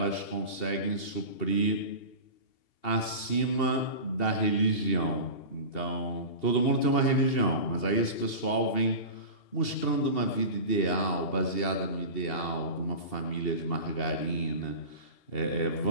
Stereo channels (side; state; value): right; late; 2.8 ms